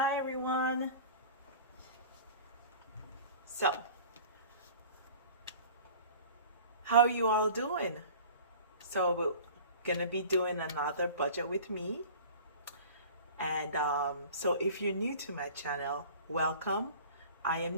everyone. So, how are you all doing? So we're gonna be doing another budget with me. And so if you're new to my channel, welcome. I am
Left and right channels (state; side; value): inverted; both; correlation -0.42